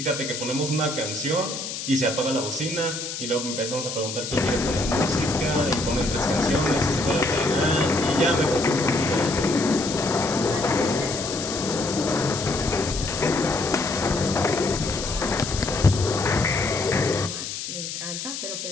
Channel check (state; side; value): noise; left; hiss, 6 dB below the sound